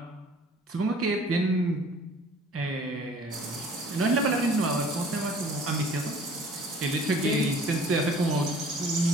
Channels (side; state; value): both; normal; correlation 0.51